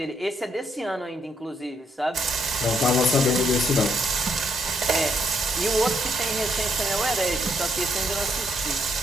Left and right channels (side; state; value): both; normal; correlation 0.74